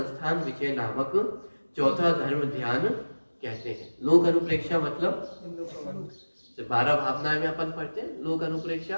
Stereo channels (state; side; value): inverted; both; correlation -1.00